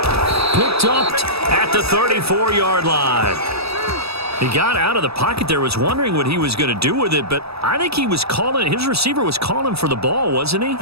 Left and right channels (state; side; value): late; left; 0.78 ms